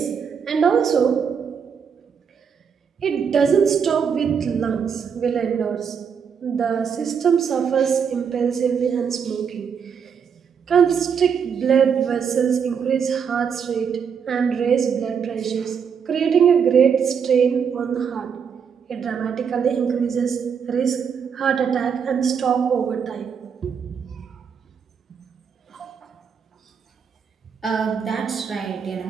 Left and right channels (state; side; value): quieter; left; 6.9 dB